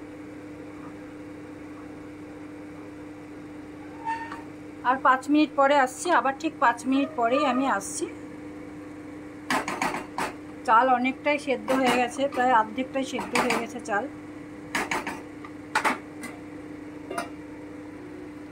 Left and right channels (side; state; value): both; identical; correlation 1.00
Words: আর 5 মিনিট পরে আসছি, আবার ঠিক 5 মিনিট পরেই আমি আসছি। চাল অনেকটাই সেদ্ধ হয়ে গেছে, প্রায় অর্ধেকটাই সেদ্ধ হয়ে গেছে চাল।